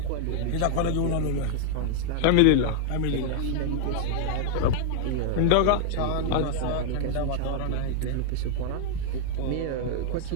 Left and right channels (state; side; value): different; both; correlation 0.00